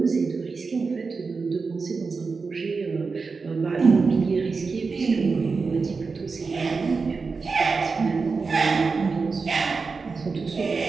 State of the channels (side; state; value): left; quieter; 4.6 dB